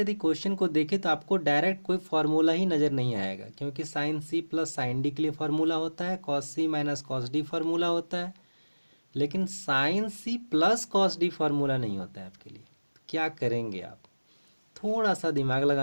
यदि क्वेश्चन को देखें तो आपको डायरेक्ट कोई फार्मूला ही नज़र नहीं आएगा, क्योंकि sine C plus sine D के लिए फार्मूला होता है, cos C minus cos D formula होता है, लेकिन sine C plus cos D formula नहीं होता है आपके लिए। तो क्या करेंगे आप? थोड़ा सा दिमाग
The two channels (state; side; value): inverted; both; correlation -1.00